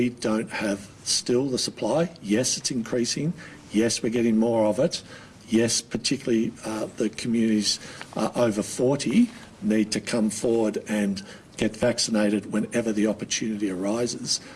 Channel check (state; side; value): identical; both; correlation 1.00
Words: don't have still the supply. Yes, it's increasing. Yes, we're getting more of it. Yes, particularly the communities over 40 need to come forward and get vaccinated whenever the opportunity arises.